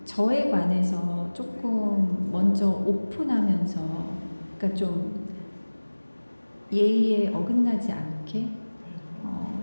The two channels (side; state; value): both; inverted; correlation -1.00